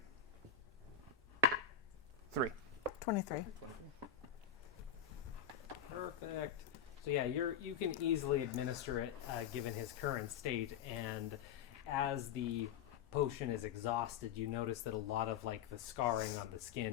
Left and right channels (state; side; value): quieter; right; 7.6 dB